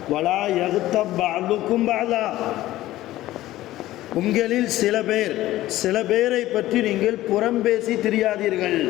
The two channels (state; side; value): quieter; right; 15.6 dB